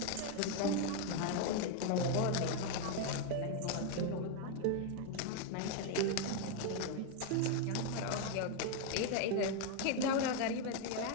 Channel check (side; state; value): both; different; correlation 0.01